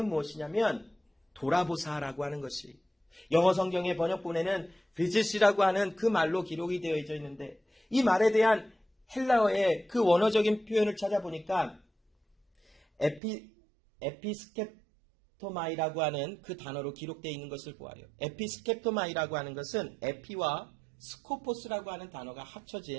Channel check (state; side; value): drops out; left; at 13.2 s